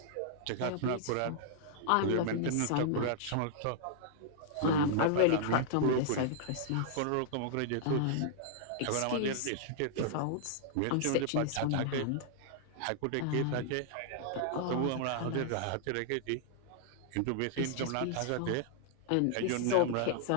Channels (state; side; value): different; both; correlation -0.01